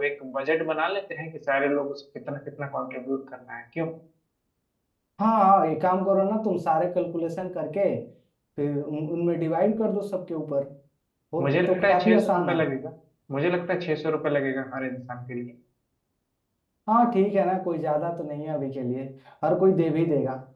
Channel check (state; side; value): identical; both; correlation 1.00